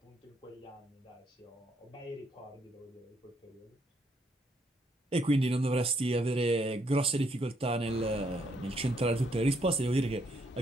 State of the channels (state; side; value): normal; both; correlation 0.72